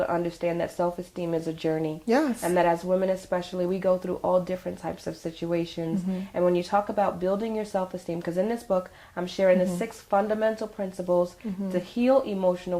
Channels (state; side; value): identical; both; correlation 1.00